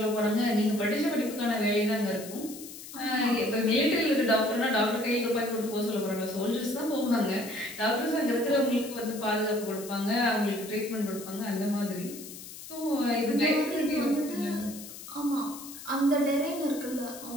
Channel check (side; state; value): left; noise; hiss, 13 dB below the sound